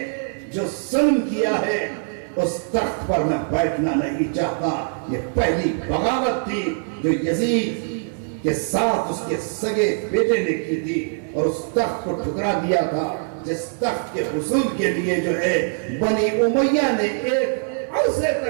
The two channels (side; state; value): left; silent; 64 dB below the other